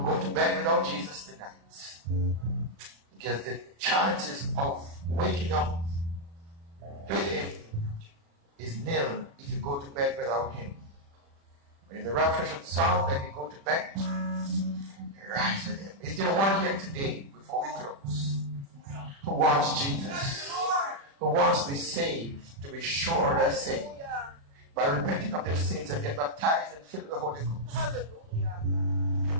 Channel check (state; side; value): late; left; 36 ms